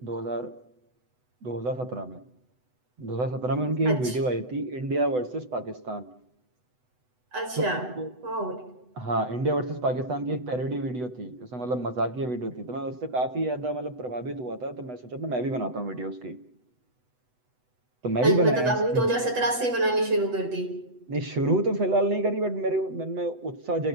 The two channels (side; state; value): left; late; 8.0 ms